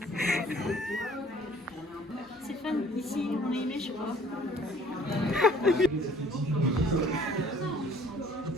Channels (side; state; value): both; normal; correlation 0.55